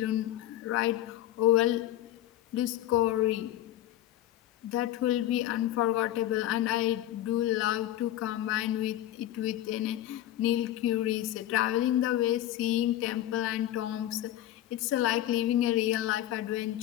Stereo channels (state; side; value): quieter; right; 13.4 dB